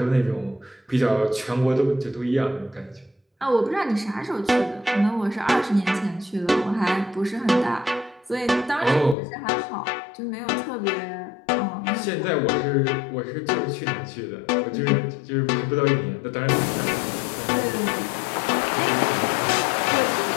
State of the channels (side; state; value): right; drops out; at 9.2 s